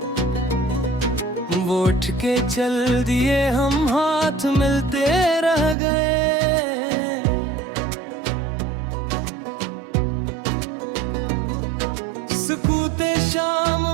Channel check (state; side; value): drops out; left; at 5.8 s